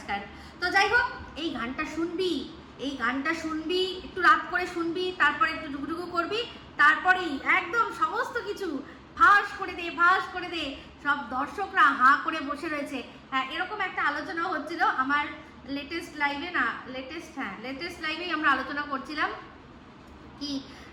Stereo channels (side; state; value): both; identical; correlation 1.00